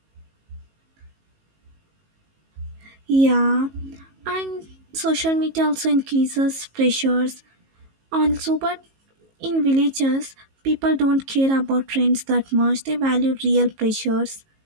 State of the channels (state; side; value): late; left; 19 ms